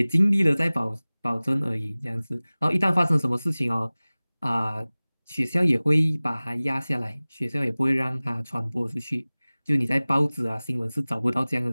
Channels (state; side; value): inverted; both; correlation -0.99